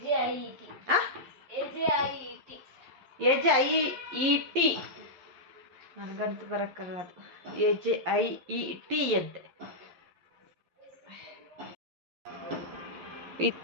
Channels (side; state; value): left; late; 11 ms